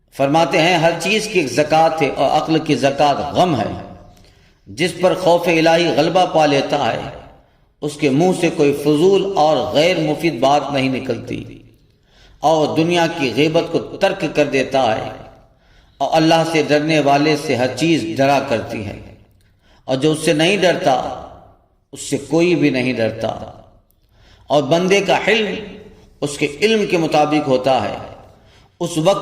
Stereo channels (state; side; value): identical; both; correlation 1.00